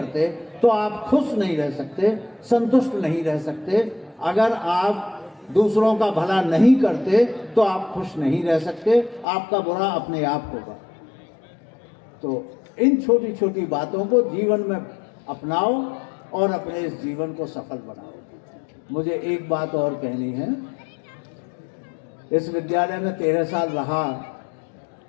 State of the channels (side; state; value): right; drops out; at 9.2 s